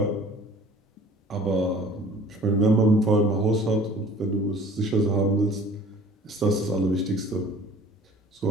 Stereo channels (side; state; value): both; normal; correlation 0.49